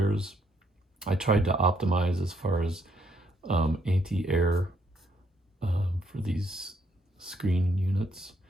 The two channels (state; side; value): normal; both; correlation 0.72